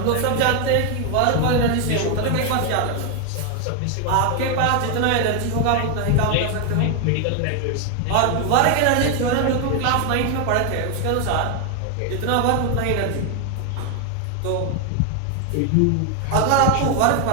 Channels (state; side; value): different; both; correlation 0.01